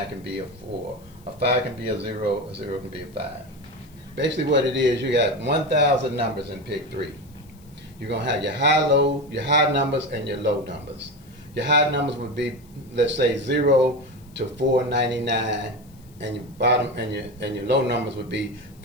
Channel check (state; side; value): noise; left; hiss, 28 dB below the sound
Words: can be a 4, a 5 can be a 0 can be a 5. Basically what it is, you got 1,000 numbers in Pick-3. You're going to have your high numbers and your low numbers. Your high numbers would be, let's say, 0 to 499. And your bottom and your low numbers would be